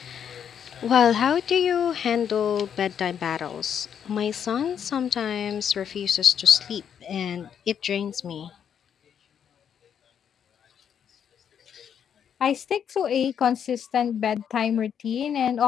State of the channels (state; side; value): quieter; right; 8.3 dB